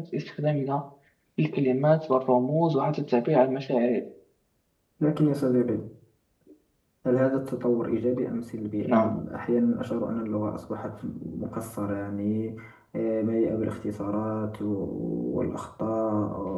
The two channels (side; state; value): both; identical; correlation 1.00